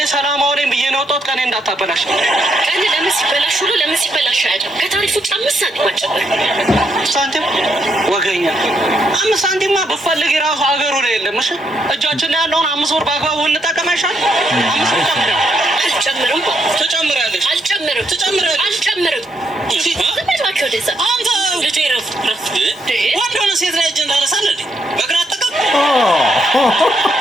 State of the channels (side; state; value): both; normal; correlation 0.77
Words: ሰላማዊ ነኝ ብዬ ነው ወጣሁት። ቀኔ እንዳታበላሽ። ቀኔ ለምን ሲበላሽ አይደል? ከታሪፍ ውጭ 5 ሳንቲም አጨመር። ሳንቲም ወገኛ 5 ሳንቲማ በፈልግ የራሱ ሀገሩ ላይ የለም። እሺ እጃችን ላይ ያለውን 5 ብር በአግባቡ እንጠቀም አይሻል? 5 ብር አልጨምርም። ትጨምሪያለሽ። አልጨምርም። አንተ ልጄ ረፍ ወንድ ሆነ ሴት ላይ እጅ እንዳነሳለ በግራ አጠቀም